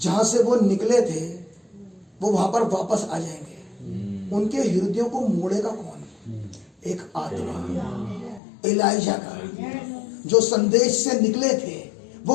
से वो निकले थे, वो वहां पर वापस आ जाएंगे। उनके हृदयों को मोड़ेगा कौन? एक आत्मा, एलाइजा का, जो संदेश से निकले थे वो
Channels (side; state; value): right; drops out; at 8.4 s